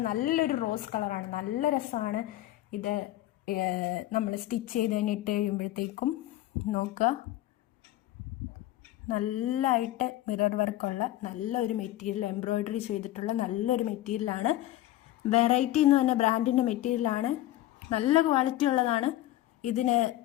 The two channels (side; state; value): right; quieter; 14.9 dB